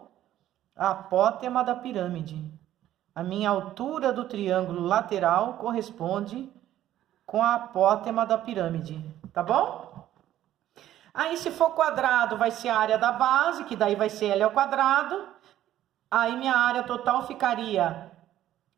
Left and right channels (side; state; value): left; quieter; 12.7 dB